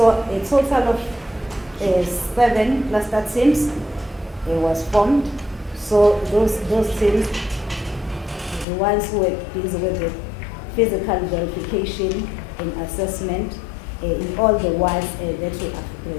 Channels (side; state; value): right; drops out; at 8.7 s